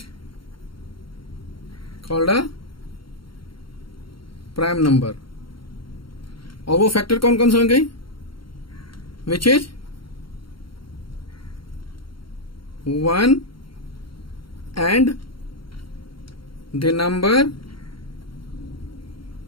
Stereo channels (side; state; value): right; late; 0.73 ms